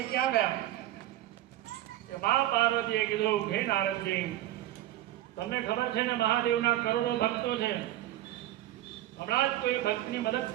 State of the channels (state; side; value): quieter; left; 14.2 dB